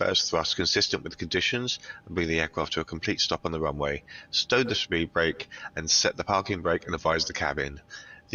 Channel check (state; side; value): identical; both; correlation 1.00